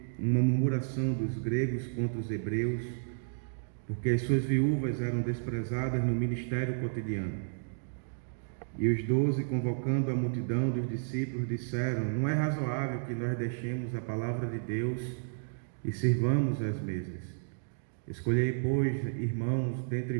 uma murmuração dos gregos contra os hebreus, porque as suas viúvas eram desprezadas no ministério cotidiano. E os 12, convocando a multidão dos discípulos, disseram: não é razoável que nós deixemos a palavra de Deus e sirvamos às mesas. Escolhei, pois, irmãos, dentre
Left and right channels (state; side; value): silent; left; digital silence